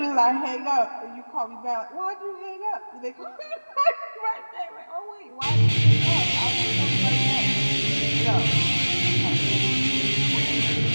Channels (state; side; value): inverted; both; correlation -1.00